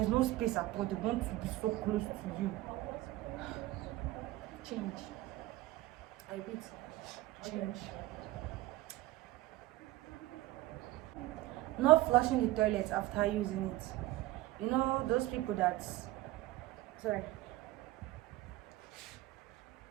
no space at all. They want to be so close to you. Change. I repeat, change. Not flushing the toilet after using it. You know those people that,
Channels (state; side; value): quieter; left; 17.0 dB